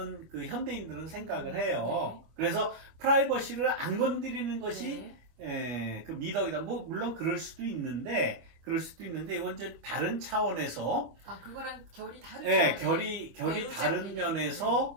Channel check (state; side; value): late; left; 25 ms